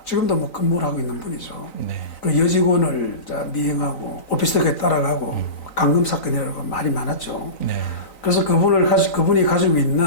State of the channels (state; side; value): late; right; 3.9 ms